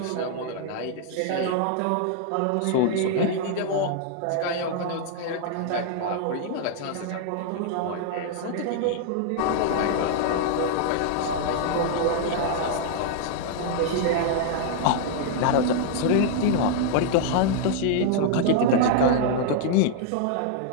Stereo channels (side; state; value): both; different; correlation -0.01